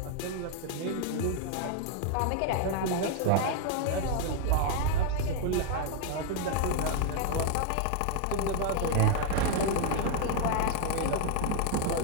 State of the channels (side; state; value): both; different; correlation 0.00